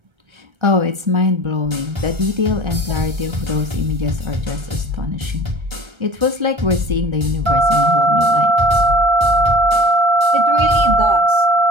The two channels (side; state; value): left; late; 1.3 ms